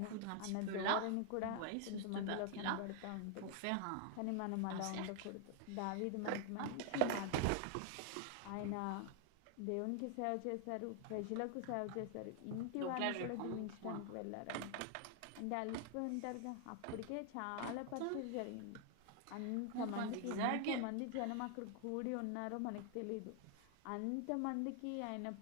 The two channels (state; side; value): different; both; correlation 0.00